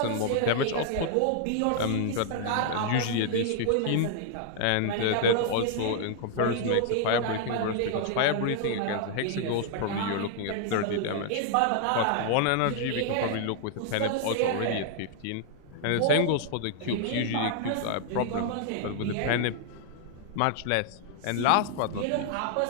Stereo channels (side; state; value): both; different; correlation -0.01